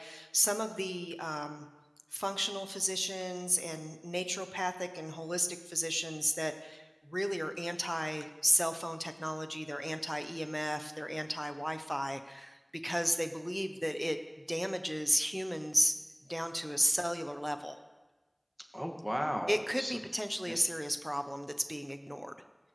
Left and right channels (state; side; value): identical; both; correlation 1.00